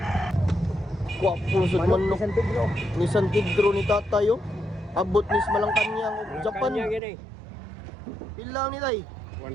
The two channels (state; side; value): drops out; left; at 7.0 s